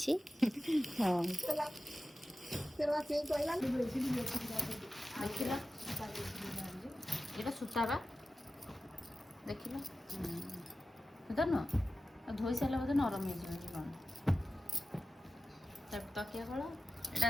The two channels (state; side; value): normal; both; correlation 0.94